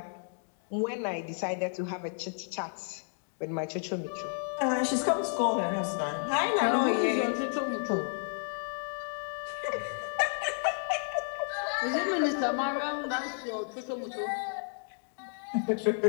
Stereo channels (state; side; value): silent; right; digital silence